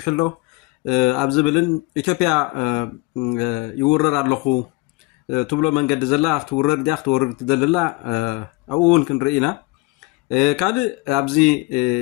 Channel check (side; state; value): right; quieter; 23.2 dB